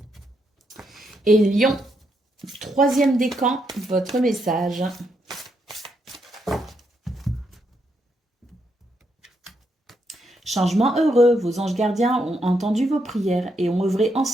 Et Lion, troisième décan, votre message. Changement heureux, vos anges gardiens ont entendu vos prières et ont œuvré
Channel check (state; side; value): normal; both; correlation 0.79